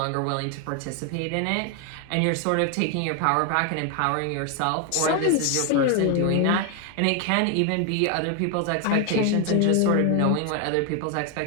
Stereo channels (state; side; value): different; both; correlation 0.01